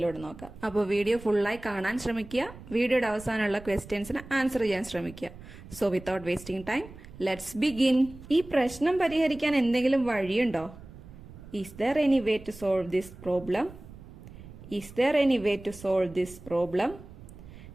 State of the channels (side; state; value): right; noise; rumble, 17 dB below the sound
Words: നോക്കാം. അപ്പോൾ വീഡിയോ ഫുള്ളായി കാണാൻ ശ്രമിക്കുക. വീഡിയോയുടെ അവസാനമുള്ള ക്വസ്റ്റ്യൻസിന് ആൻസർ ചെയ്യാൻ ശ്രമിക്കുക. So without wasting time let's begin. ഈ പ്രശ്നം പരിഹരിക്കാൻ എന്തെങ്കിലും വഴിയുണ്ടോ? Is there any way to solve this problem? Is there any way to solve this problem?